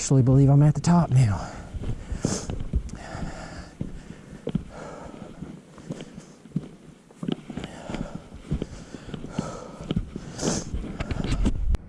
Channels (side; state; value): both; identical; correlation 1.00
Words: believe I'm at the top now.